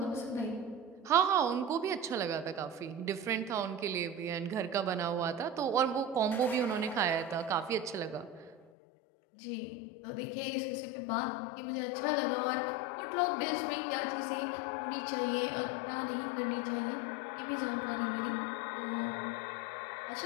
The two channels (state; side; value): drops out; right; at 8.7 s